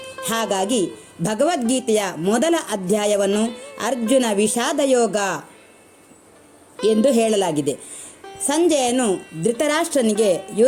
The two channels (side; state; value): both; identical; correlation 1.00